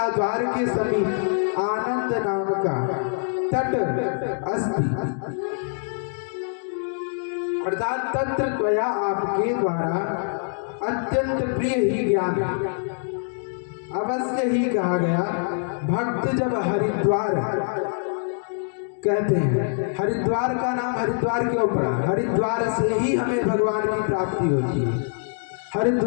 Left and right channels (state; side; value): silent; right; digital silence